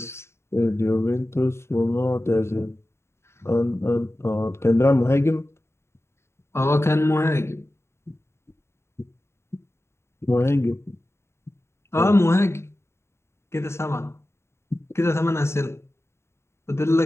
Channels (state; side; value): late; right; 0.13 ms